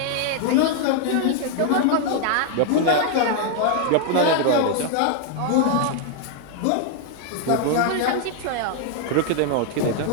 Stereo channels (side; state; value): both; different; correlation 0.00